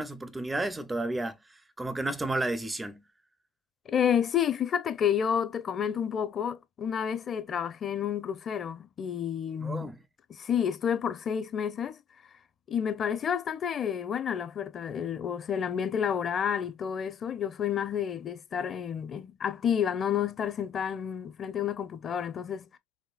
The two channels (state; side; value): quieter; right; 6.5 dB